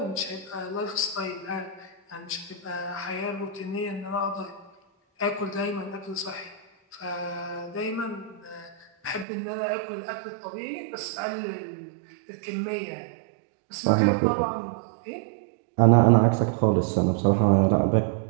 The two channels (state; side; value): drops out; left; at 9.2 s